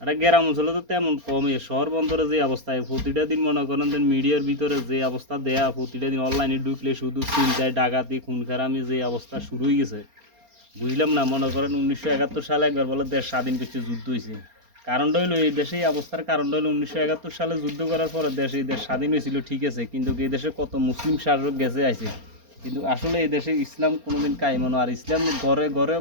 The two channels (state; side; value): late; left; 4.3 ms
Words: একটা গ্রাম অঞ্চলে তো তেমন কমই, শহর বন্দরে যে অবস্থায় প্রতিটা দিন মনে করেন যে মিডিয়ার ভিতরে যে অবস্থা দেয়া, প্রতিটা দিন অনলাইনে ঢুকলে শুধু চিন্তায় ডাকাতি খুন খারামি যে অবস্থা শুরু হয়ে গেছে বুঝলাম না। মনে করেন 1971 সালে একবার বলে দেশ স্বাধীন করছে, যুদ্ধ হয়েছে। কারণটা হইলো এই দেশে এই অবস্থার কারণটা হলো 1971 সালে যুদ্ধ করার পরে এই দেশ স্বাধীন হয়েছিল ঠিক আছে, কিন্তু এই দেশে কত মুসলিম শাসক গেছে আছে, কিন্তু আসলে এই দেশে ইসলাম কোনোদিন কায়েমনো, আর ইসলাম ঘরে ঘরেও